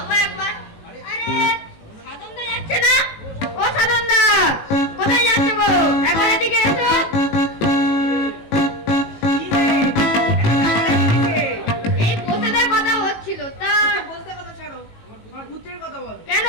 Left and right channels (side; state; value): right; late; 18 ms